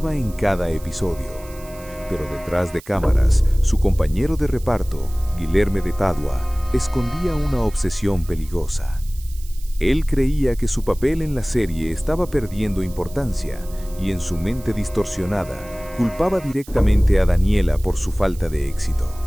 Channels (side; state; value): right; noise; hiss, 21 dB below the sound